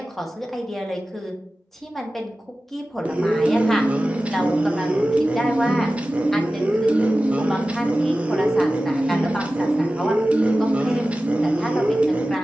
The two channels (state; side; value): normal; both; correlation 0.95